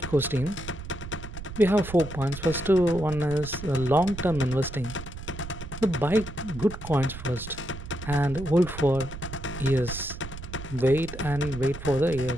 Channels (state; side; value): noise; right; rumble, 11 dB below the sound